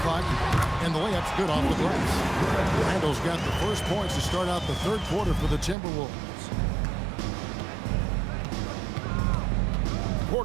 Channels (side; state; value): left; drops out; at 5.8 s